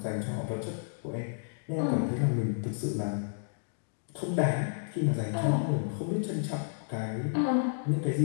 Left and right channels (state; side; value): silent; right; digital silence